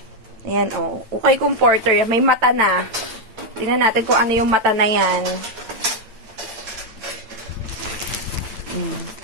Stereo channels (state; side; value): late; left; 8.9 ms